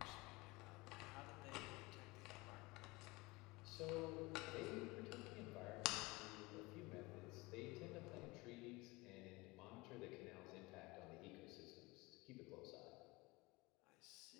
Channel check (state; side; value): quieter; right; 22.6 dB